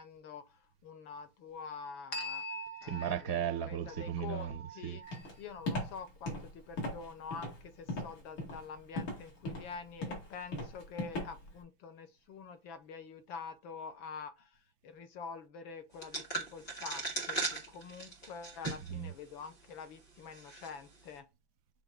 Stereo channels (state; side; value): late; right; 6.0 ms